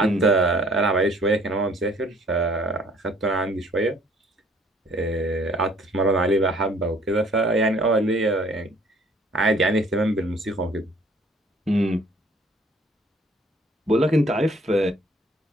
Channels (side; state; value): both; normal; correlation 0.57